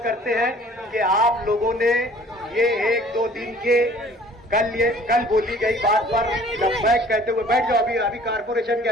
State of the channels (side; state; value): both; normal; correlation 0.52